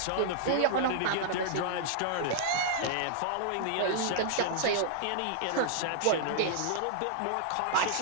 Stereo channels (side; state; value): both; different; correlation -0.01